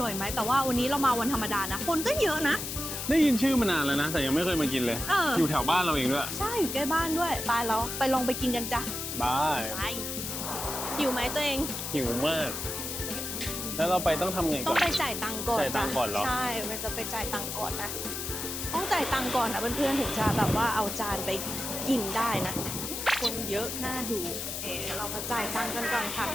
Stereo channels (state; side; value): noise; left; hiss, 5 dB below the sound